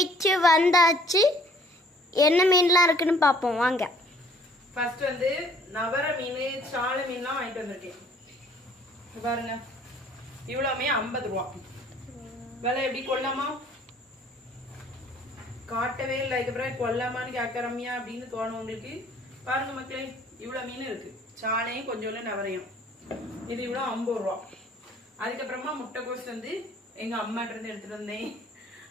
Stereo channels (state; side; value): normal; both; correlation 0.57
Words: வந்தாச்சு. என்ன மீன்லாம் இருக்குன்னு பார்ப்போம் வாங்க. ஃபர்ஸ்ட் வந்து நவர மீன், சால மீன்லாம் வாங்கிட்டு வந்திருக்கேன். பாருங்க, இவ்வளவுமே 50 ரூபா. விலை எப்படி கொள்ளாமா? காட்டவே இல்லை. இதுக்கப்புறம் கொல்லாமான்னு கேட்கறமியா அப்படின்னு தோணும் உங்களுக்கு. பாருங்க மக்களே, இவ்வளவு மீன் இருக்கு. சாலையும் கொஞ்சம் நவரையும். இது இவ்வளவு 50 ரூபா. அதுக்கப்புறமா முட்டைக்கோஸ் வந்து எங்க அம்மாட்ட இருந்து எடுத்துட்டு வந்தேன்.